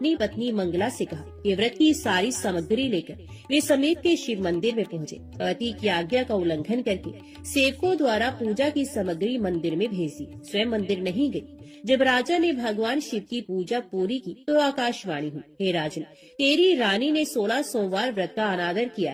पत्नी मंगला से कहा कि व्रत की सारी सामग्री लेकर वे समीप के शिव मंदिर में पहुँचे। पति की आज्ञा का उल्लंघन करके सेवकों द्वारा पूजा की सामग्री मंदिर में भेज दी। स्वयं मंदिर नहीं गई। जब राजा ने भगवान शिव की पूजा पूरी की तो आकाशवाणी हुई, हे राजन, तेरी रानी ने 16 सोमवार व्रत का अनादर किया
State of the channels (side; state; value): both; identical; correlation 1.00